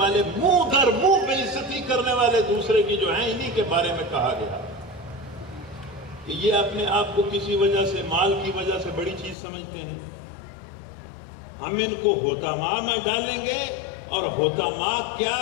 منہ در منہ بےعزتی کرنے والے دوسرے کی جو ہیں، انہی کے بارے میں کہا گیا کہ یہ اپنے آپ کو کسی وجہ سے، مال کی وجہ سے بڑی چیز سمجھتے ہیں۔ ہم ان کو حطماء میں ڈالیں گے، اور حطماء کیا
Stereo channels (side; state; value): right; drops out; at 9.3 s